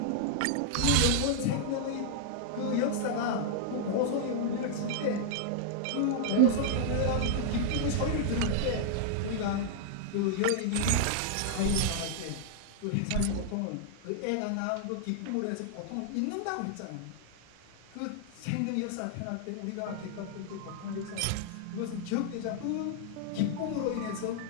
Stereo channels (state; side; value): different; both; correlation -0.01